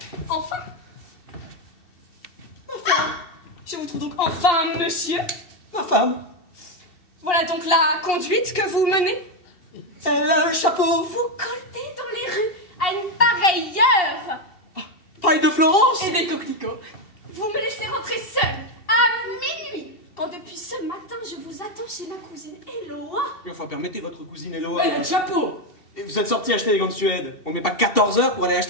Enfin. Je vous trouve donc enfin, monsieur. Ma femme. Voilà donc la conduite que vous menez. Elle a le chapeau. Vous coltez dans les rues à une pareille heure. Paille de Florence. Et des coquelicots. Vous me laissez rentrer seule à minuit. Quand depuis ce matin, je vous attends chez ma cousine Eloa. Enfin, permettez votre cousine Eloa. Elle a le chapeau. Et vous êtes sorti acheter des gants de Suède. On met pas 14 heures pour aller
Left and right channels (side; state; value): right; late; 2.7 ms